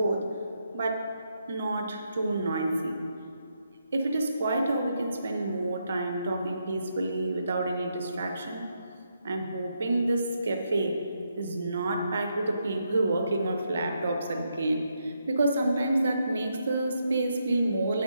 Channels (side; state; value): both; inverted; correlation -0.80